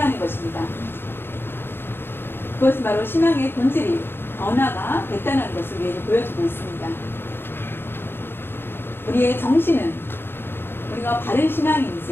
것입니다. 그것은 바로 신앙의 본질이 변화가 됐다는 것을 우리에게 보여주고 있습니다. 우리의 정신은 우리가 바른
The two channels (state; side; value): late; right; 0.10 ms